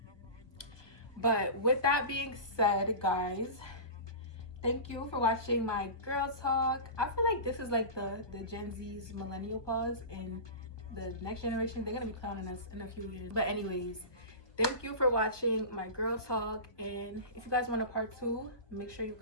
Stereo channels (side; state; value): right; late; 1.3 ms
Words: But with that being said, guys, thank you for watching my girl talk. I feel like this is like the Gen Z's millennial pause, and the next generation, they're gonna be clowning us in a few years. But anyways, thank you for watching my girl talk, and if you guys want a part 2, make sure you